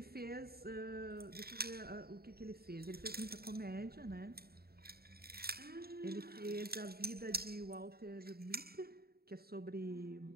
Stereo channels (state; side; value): late; left; 0.45 ms